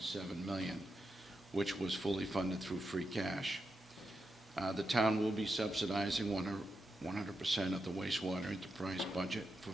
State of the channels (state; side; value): normal; both; correlation 0.87